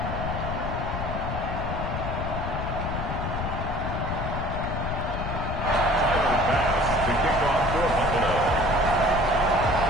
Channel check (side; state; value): left; noise; rumble, 4 dB below the sound